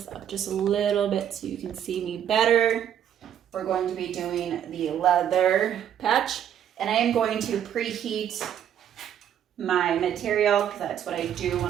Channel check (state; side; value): quieter; left; 9.7 dB